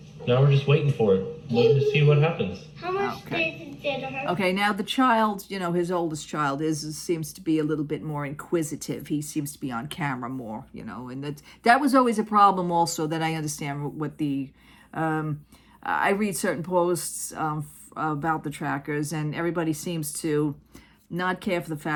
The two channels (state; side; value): identical; both; correlation 1.00